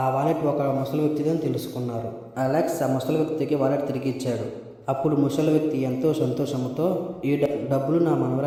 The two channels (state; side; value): identical; both; correlation 1.00